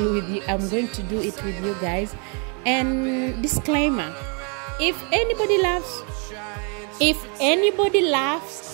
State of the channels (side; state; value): left; quieter; 37.3 dB